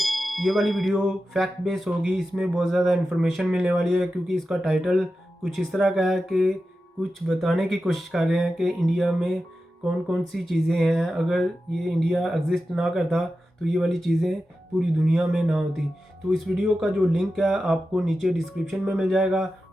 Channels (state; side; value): normal; both; correlation 0.92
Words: ये वाली वीडियो फैक्ट बेस होगी। इसमें बहुत ज़्यादा इन्फॉर्मेशन मिलने वाली है क्योंकि इसका टाइटल कुछ इस तरह का है कि कुछ बताने की कोशिश कर रहे हैं कि इंडिया में कौन कौन सी चीज़ें हैं। अगर ये इंडिया एग्जिस्ट ना करता तो ये वाली चीज़ें पूरी दुनिया में ना होती। तो इस वीडियो का जो लिंक है आपको नीचे डिस्क्रिप्शन में मिल जाएगा।